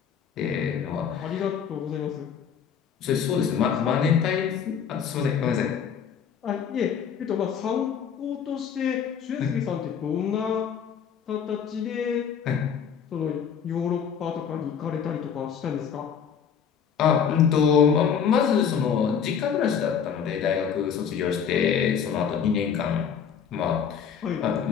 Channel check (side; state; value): right; quieter; 7.5 dB